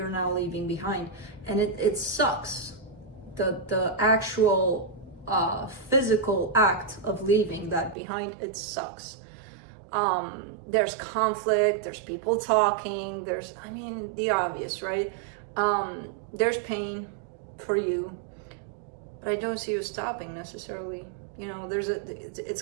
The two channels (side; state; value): left; drops out; at 8.0 s